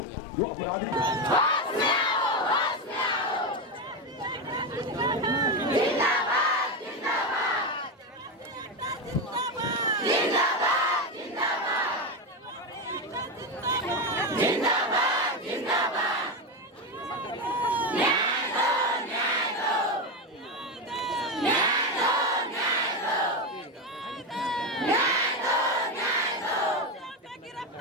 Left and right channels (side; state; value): both; normal; correlation 0.13